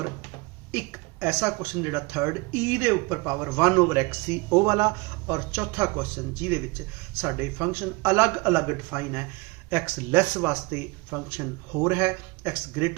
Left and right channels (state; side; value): quieter; left; 26.1 dB